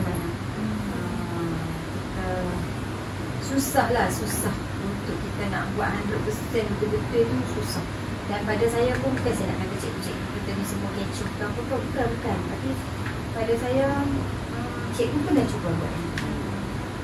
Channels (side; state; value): both; identical; correlation 1.00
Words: Susah untuk kita nak buat 100% betul-betul tu susah. Dan pada saya pun bukan saya nak kata cikgu-cikgu kita ni semua kecoh ke apa ke, bukan. Tapi pada saya cikgu pun dah cuba buat ni.